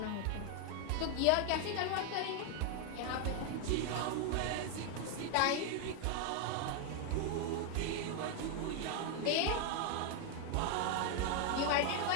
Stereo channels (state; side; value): different; both; correlation 0.01